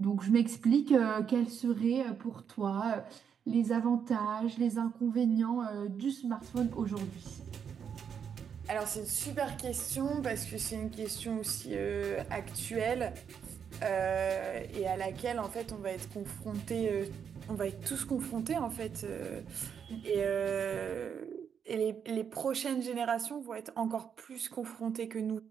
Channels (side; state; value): left; quieter; 7.5 dB